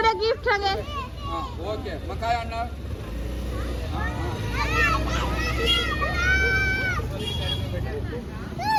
गिफ्ट सांगे. हा ओके. मग काय आणणार?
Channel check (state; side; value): identical; both; correlation 1.00